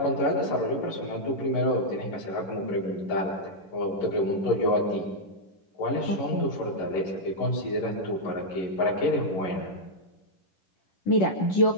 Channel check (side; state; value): right; late; 11 ms